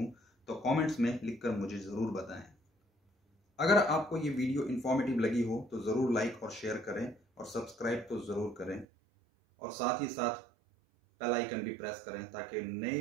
तो कमेंट्स में लिखकर मुझे जरूर बताएं। अगर आपको ये वीडियो इंफॉर्मेटिव लगी हो तो जरूर लाइक और शेयर करें और सब्सक्राइब तो जरूर करें और साथ ही साथ बेल आइकन भी प्रेस करें ताकि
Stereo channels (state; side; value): drops out; left; at 8.8 s